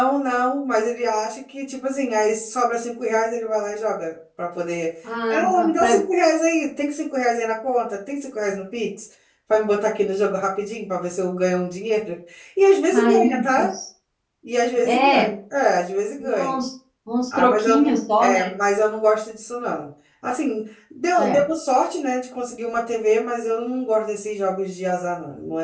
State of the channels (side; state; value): both; identical; correlation 1.00